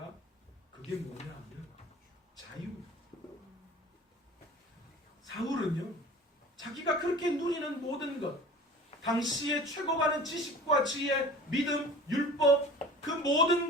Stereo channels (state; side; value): normal; both; correlation 0.41